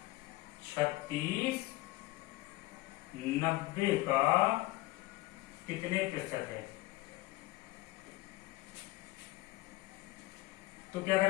36 90 का कितने प्रतिशत है? तो क्या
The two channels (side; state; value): right; quieter; 19.5 dB